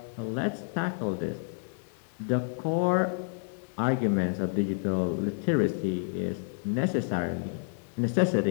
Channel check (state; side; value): silent; right; digital silence